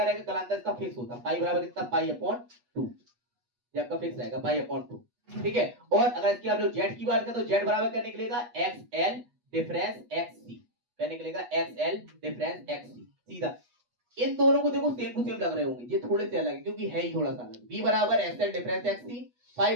रहेगा, कलांतर इसका फिक्स होता है, पाई बराबर कितना, पाई अपॉन 2, ये आपका फिक्स रहेगा पाई अपॉन 2, ठीक है। और अगर इसकी आप लोग जेड की बात करें तो जेड बराबर क्या निकलेगा, एक्स एल डिफरेंस एक्स सी, क्या निकलेगा, एक्स एल डिफरेंस एक्स सी, सीधा। इन दोनों को देखो सेम टू सेम लग रहे होंगे, ये थोड़े से अलग है क्योंकि है ही थोड़ा सा अलग। बी बराबर एक्स एल डिफरेंस एक्स सी, पाई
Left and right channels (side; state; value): left; late; 8.2 ms